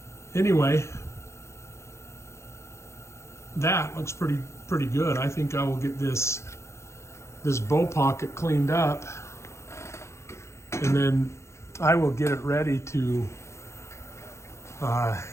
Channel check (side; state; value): right; late; 0.13 ms